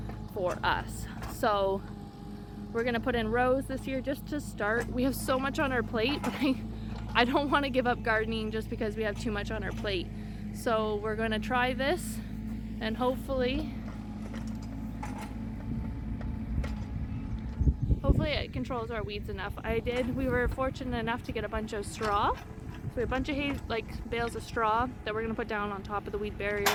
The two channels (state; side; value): identical; both; correlation 1.00